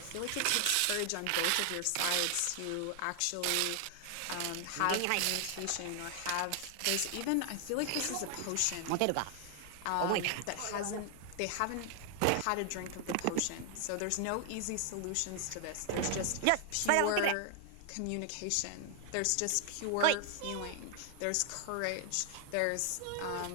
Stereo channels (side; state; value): both; different; correlation 0.00